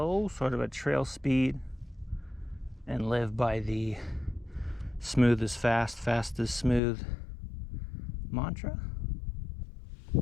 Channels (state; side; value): drops out; right; at 6.8 s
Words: sort of a trail speed, and live by the smooth is fast, fast is smooth mantra.